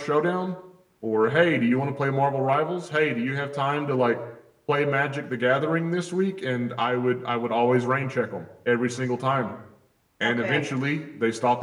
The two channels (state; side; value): identical; both; correlation 1.00